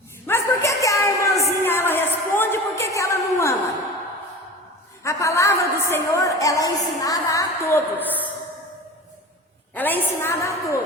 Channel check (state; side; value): normal; both; correlation 0.34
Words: Mas por que a irmãzinha ela responde e por que ela não ama? A palavra do Senhor, ela é ensinada a todos. Ela é ensinada a